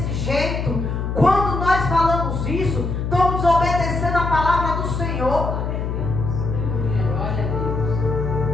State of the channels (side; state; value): left; noise; hum, 2 dB below the sound